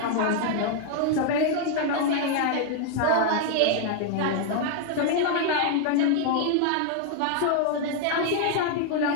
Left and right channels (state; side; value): different; both; correlation 0.00